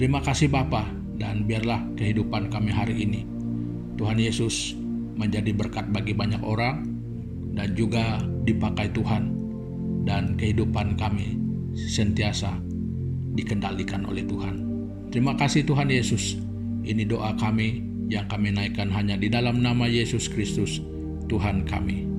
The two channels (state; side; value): identical; both; correlation 1.00